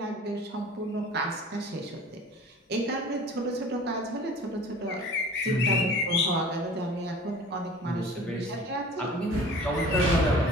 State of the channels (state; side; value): normal; both; correlation 0.44